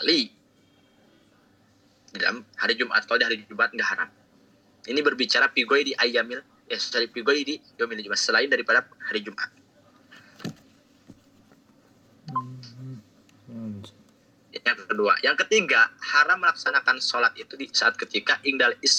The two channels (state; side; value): identical; both; correlation 1.00